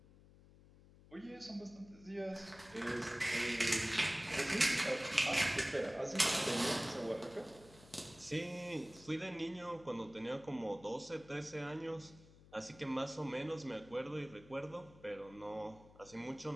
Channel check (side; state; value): left; noise; hum, 22 dB below the sound